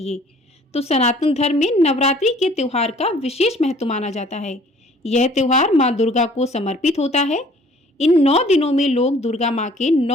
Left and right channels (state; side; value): normal; both; correlation 0.54